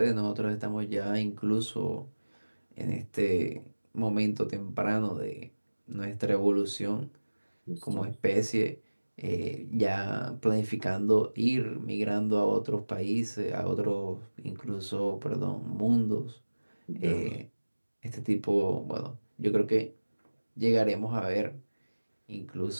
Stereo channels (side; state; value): both; inverted; correlation -1.00